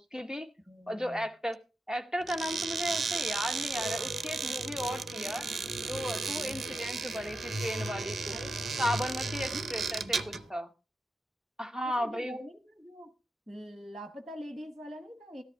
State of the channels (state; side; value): normal; both; correlation 0.87